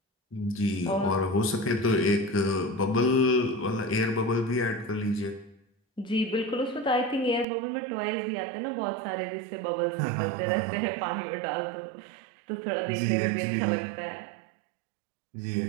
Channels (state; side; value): drops out; left; at 7.5 s